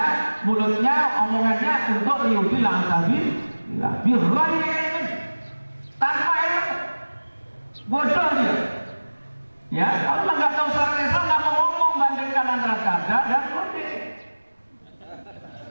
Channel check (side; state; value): both; inverted; correlation -1.00